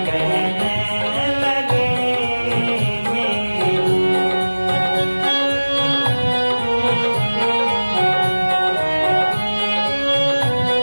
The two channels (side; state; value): both; inverted; correlation -1.00